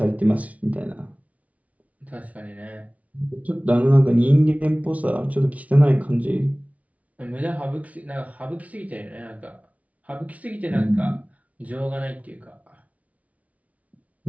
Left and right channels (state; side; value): late; left; 0.068 ms